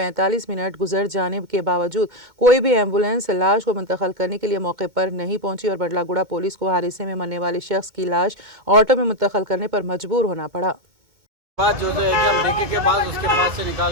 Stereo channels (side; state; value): left; late; 2.1 ms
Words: मिनट गुजर जाने के बावजूद कोई भी एम्बुलेंस लाश को मुंतकिल करने के लिए मौके पर नहीं पहुंची और बड़लागुड़ा पुलिस को हादसे में मरने वाले शख्स की लाश ऑटो में मुंतकिल करने पर मजबूर होना पड़ा। बात जो है कि हम देखे के बाद उसके पास से